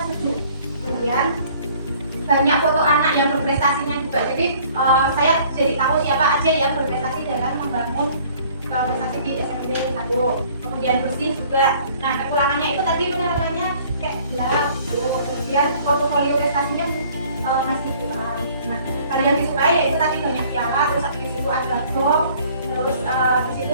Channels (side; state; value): both; inverted; correlation -0.55